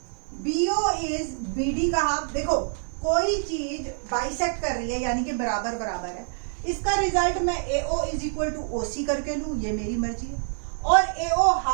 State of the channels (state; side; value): silent; left; 61 dB below the other